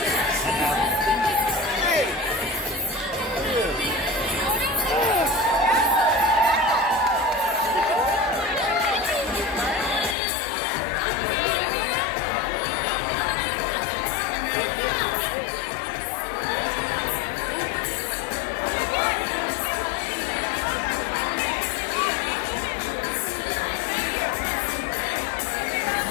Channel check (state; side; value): drops out; right; at 10.2 s